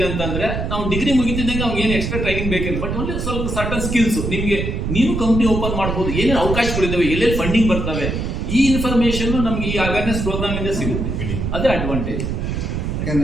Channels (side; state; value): right; noise; rumble, 2 dB below the sound